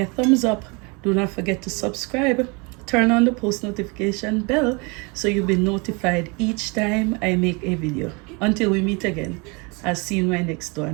thumbs up. Do not forget to subscribe. Turn on the post notification bell so you'll be notified each time I make a video. Until we meet again, I'll see you in my next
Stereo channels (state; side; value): quieter; left; 29.9 dB